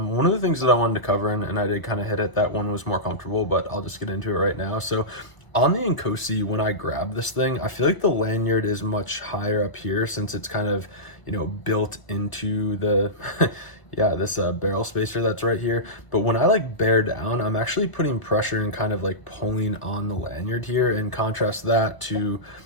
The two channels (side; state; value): right; late; 1.0 ms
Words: of the things that I wanted to cover, and I did kind of hit it, that one was more comfortable, but I'll just get into it right now. So on the Inkosi, when I grab this thing, I feel like the lanyard is much higher up here, since it's kind of, built into the this barrel spacer that's right here. But when I like bear down, I'm actually putting pressure and kind of like pulling on the lanyard here, and contrast that to